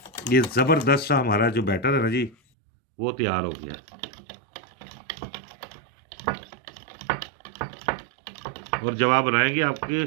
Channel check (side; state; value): left; drops out; at 2.4 s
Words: ये ज़बरदस्त सा हमारा जो बैटर है ना जी वो तैयार हो गया। और जब आप बनाएंगे आपके